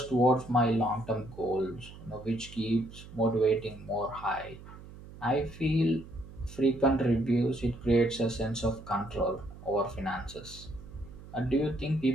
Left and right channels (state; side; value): noise; right; hum, 16 dB below the sound